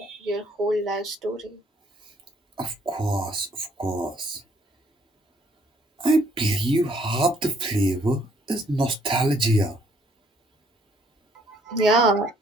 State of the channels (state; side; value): normal; both; correlation 0.65